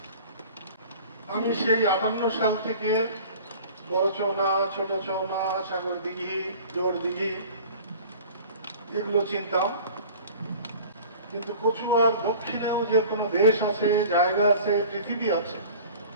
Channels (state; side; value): inverted; both; correlation -0.43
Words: আমি সেই 58 সাল থেকে বড় চৌনা, ছোট চৌনা, সাগর দিঘি, জোড় দিঘি এগুলো চিনতাম, কিন্তু কচুয়ার দক্ষিণেও যে কোনো দেশ আছে, জায়গা আছে, পৃথিবী আছে,